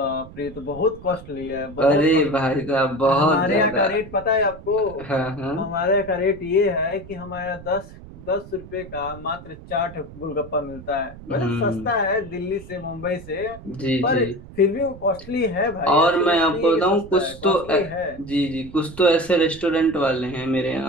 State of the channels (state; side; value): noise; right; rumble, 16 dB below the sound